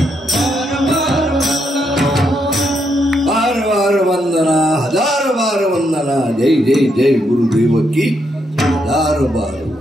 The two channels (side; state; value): both; normal; correlation 0.78